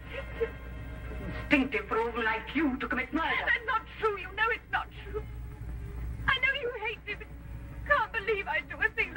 Instinctive for a woman like you to commit murder. That's not true. You know it's not true. I know you hate me, but you can't believe I'd do a thing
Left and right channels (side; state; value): both; identical; correlation 1.00